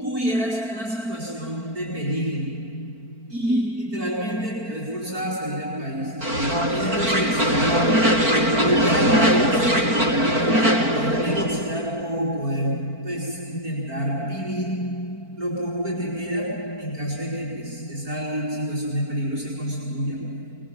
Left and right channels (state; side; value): late; left; 4.4 ms